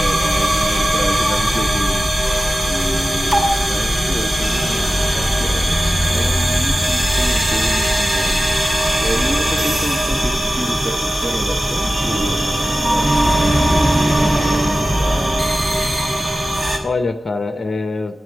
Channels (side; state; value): both; normal; correlation 0.95